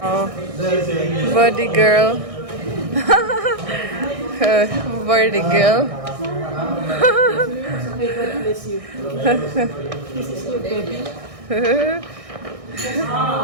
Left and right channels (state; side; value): late; left; 1.6 ms